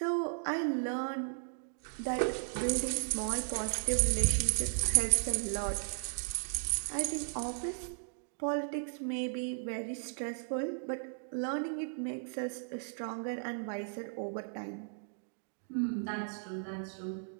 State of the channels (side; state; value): left; silent; digital silence